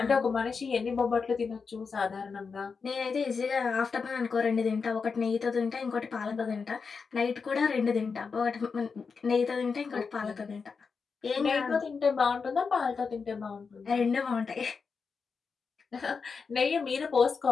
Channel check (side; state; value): right; quieter; 5.2 dB